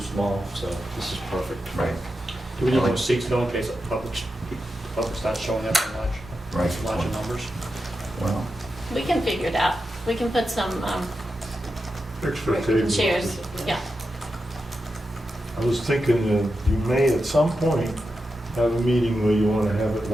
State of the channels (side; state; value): both; normal; correlation 0.89